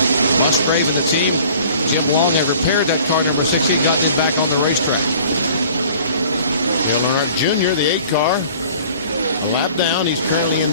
Musgrave and the team, Jim Long, have repaired that car number 16, got this back on the racetrack. Dale Earnhardt Jr., the 8 car, a lap down. He's currently in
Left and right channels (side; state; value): both; inverted; correlation -0.50